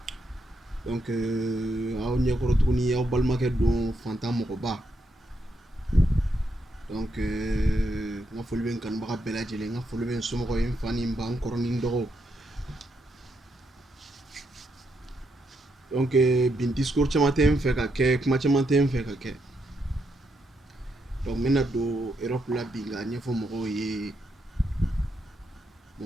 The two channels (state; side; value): normal; both; correlation 0.80